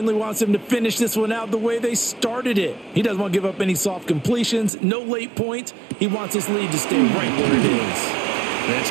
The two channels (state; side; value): drops out; left; at 4.7 s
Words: wants them to finish this one out the way they started it. He doesn't want to give up any soft completions, no late points. He wants this lead to stay right where it is. That's